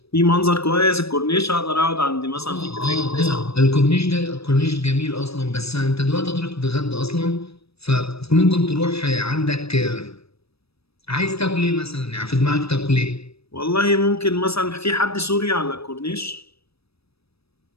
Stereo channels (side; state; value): right; late; 0.78 ms